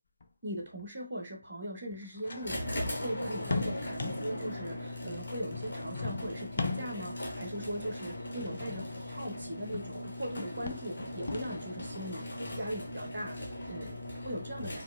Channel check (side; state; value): both; inverted; correlation -0.82